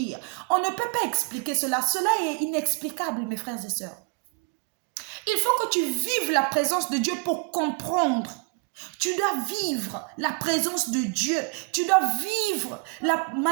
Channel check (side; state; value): left; quieter; 32.1 dB